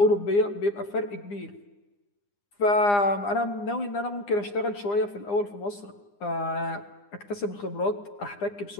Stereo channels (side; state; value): right; late; 9.8 ms